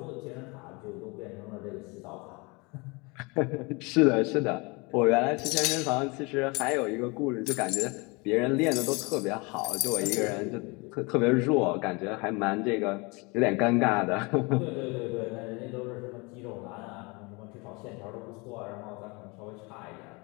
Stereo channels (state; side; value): quieter; right; 27.7 dB